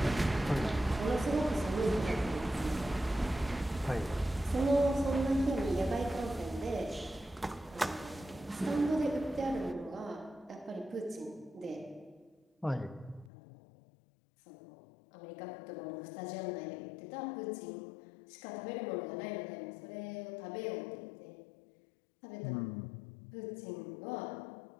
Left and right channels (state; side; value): drops out; right; at 13.3 s